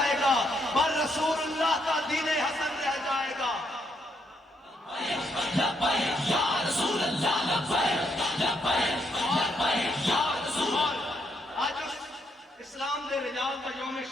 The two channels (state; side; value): normal; both; correlation 0.76